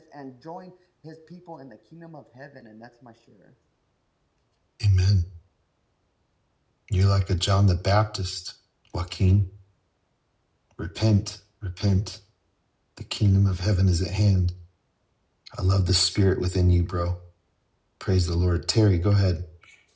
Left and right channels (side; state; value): both; identical; correlation 1.00